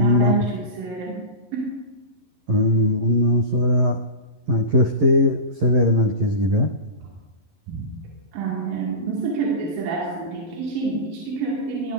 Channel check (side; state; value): left; late; 11 ms